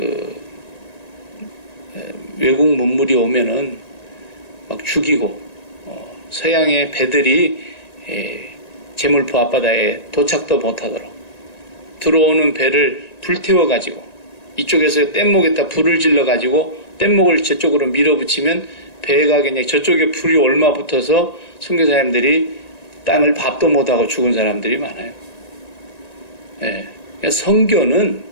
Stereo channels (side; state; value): right; late; 1.9 ms